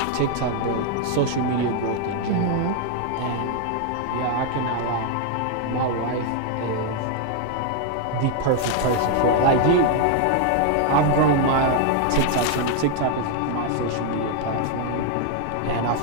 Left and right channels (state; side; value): different; both; correlation 0.00